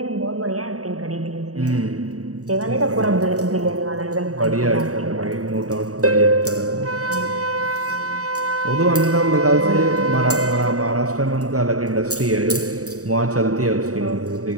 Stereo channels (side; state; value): left; late; 0.66 ms